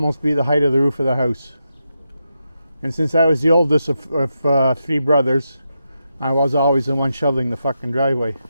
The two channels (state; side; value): inverted; both; correlation -0.86